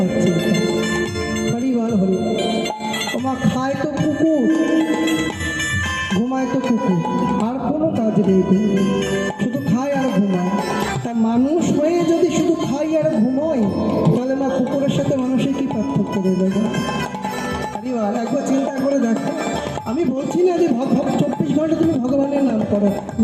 চিন্তা, হরিবার হরি। তোমার খায় তো কুকুর, ঘুমায় তো কুকুর, আর কোনো কাজ নেই, শুধু খায় আর ঘুমায়। তা মানুষ হয়ে যদি শুধু খাই আর ঘুমোই, তাহলে মা কুকুরের সাথে মানুষের কি পার্থক্য রয়ে যাবে? হরিবার, একবার চিন্তা করে দেখো। আমি বলছি না যে 24 ঘন্টা তুমি ভগবানের নাম করো,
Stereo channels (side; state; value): both; identical; correlation 1.00